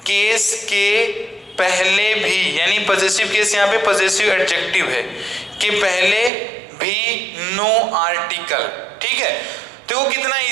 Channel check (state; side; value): drops out; left; at 6.3 s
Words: केस के पहले भी, यानी पॉजेसिव केस यहाँ पे पॉजेसिव एडजेक्टिव है, के पहले भी नो आर्टिकल। ठीक है, तो कितना